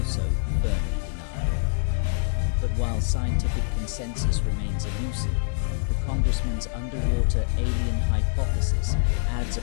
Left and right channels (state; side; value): silent; right; digital silence